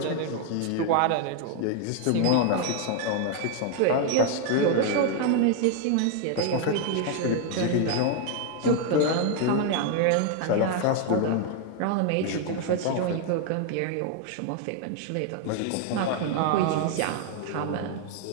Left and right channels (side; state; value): both; different; correlation 0.01